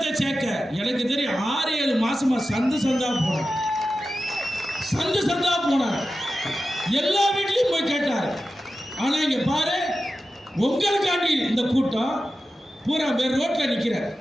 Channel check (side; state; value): both; normal; correlation 0.92